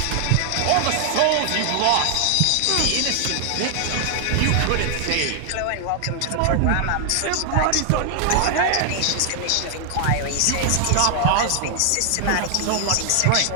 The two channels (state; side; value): different; both; correlation 0.00